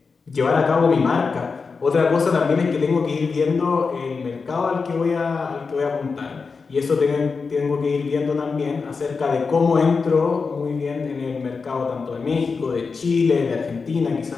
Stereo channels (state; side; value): quieter; right; 4.8 dB